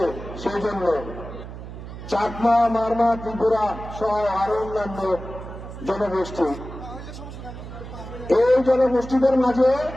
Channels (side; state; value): right; noise; hum, 11 dB below the sound